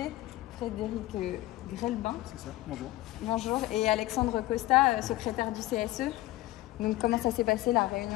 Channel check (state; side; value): quieter; right; 17.1 dB